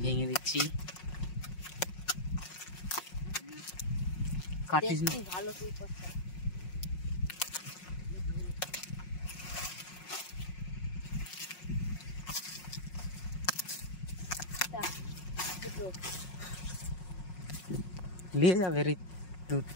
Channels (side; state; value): right; late; 5.5 ms